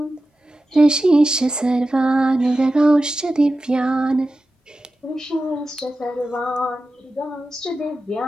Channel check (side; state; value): both; normal; correlation 0.93